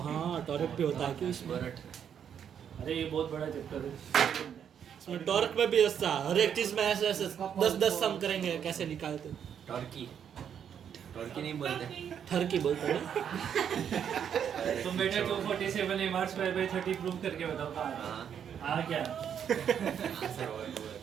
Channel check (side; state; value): left; quieter; 8.4 dB